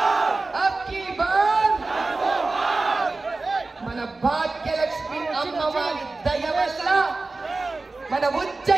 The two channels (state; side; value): quieter; left; 3.5 dB